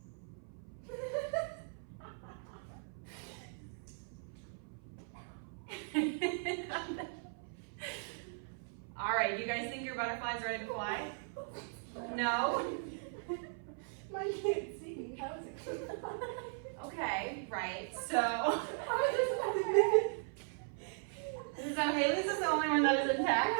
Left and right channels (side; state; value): left; silent; 52 dB below the other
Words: All right, do you guys think your butterfly's ready to fly? No? Mine can't see. How is it going to fly? Okay, right, so. So Haley's is the only one that is intact?